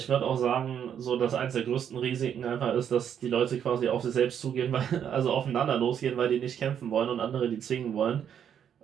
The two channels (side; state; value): left; quieter; 8.8 dB